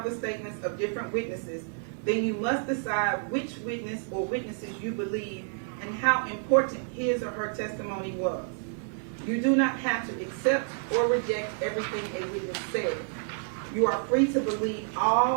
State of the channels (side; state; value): left; silent; 58 dB below the other